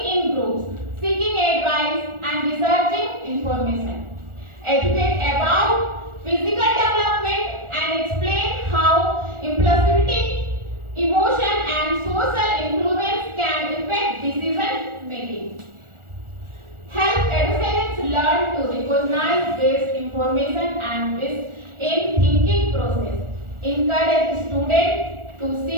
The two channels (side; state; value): left; late; 1.4 ms